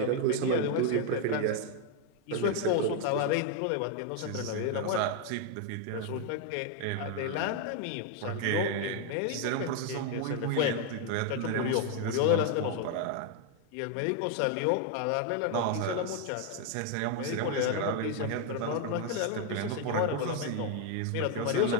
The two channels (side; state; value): both; different; correlation 0.01